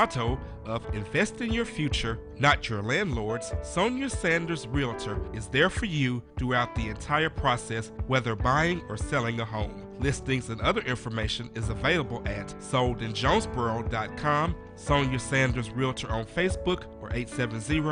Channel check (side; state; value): both; identical; correlation 1.00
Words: of invest in your future, not your landlord's, Sonia Sanders Realtor is there for you throughout the entire process, whether buying or selling a home. Listings and other information is available at soldinjonesboro.com, Sonia Sanders Realtor on Facebook, or